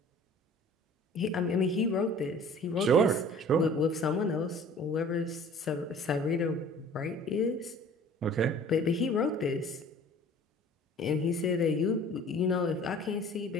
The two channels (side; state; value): both; normal; correlation 0.48